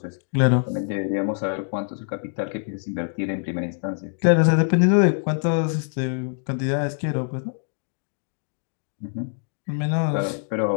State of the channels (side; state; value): right; silent; 62 dB below the other